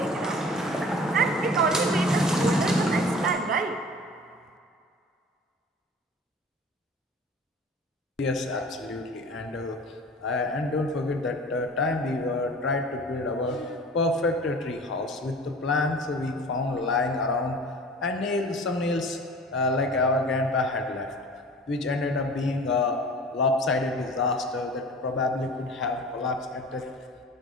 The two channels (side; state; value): both; normal; correlation 0.42